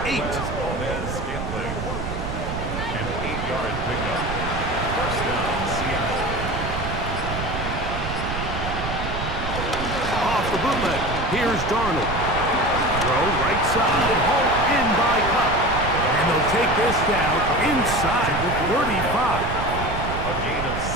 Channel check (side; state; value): right; noise; rumble, 5 dB below the sound